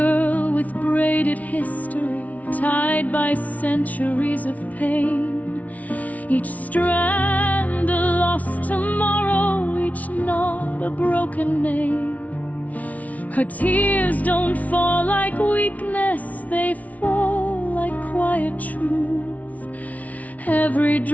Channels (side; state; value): right; late; 0.071 ms